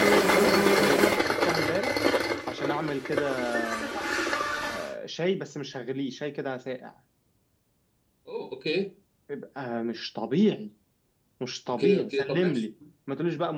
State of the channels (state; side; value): identical; both; correlation 1.00